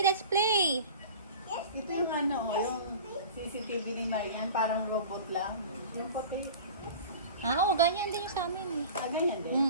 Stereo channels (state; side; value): inverted; both; correlation -0.38